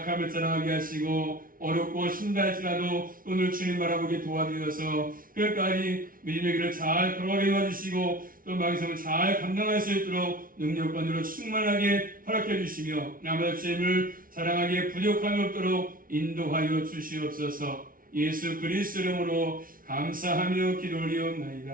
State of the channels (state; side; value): late; left; 0.41 ms